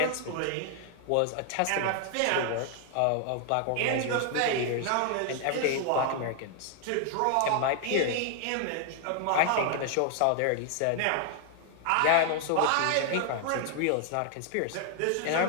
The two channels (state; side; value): different; both; correlation 0.00